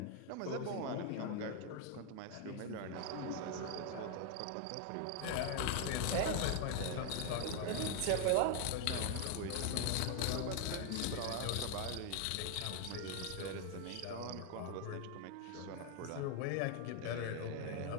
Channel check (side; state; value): both; different; correlation 0.00